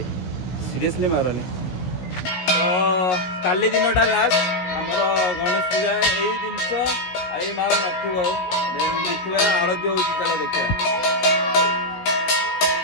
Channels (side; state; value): right; late; 17 ms